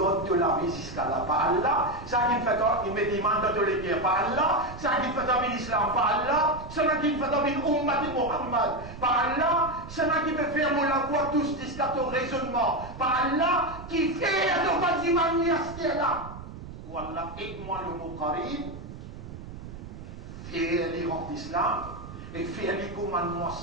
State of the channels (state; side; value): noise; right; rumble, 12 dB below the sound